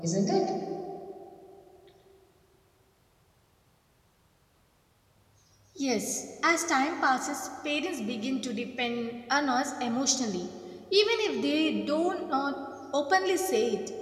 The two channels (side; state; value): both; identical; correlation 1.00